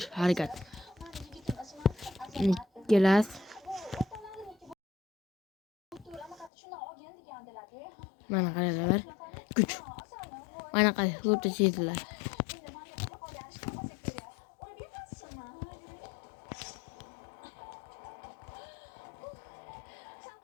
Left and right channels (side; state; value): right; drops out; at 6.5 s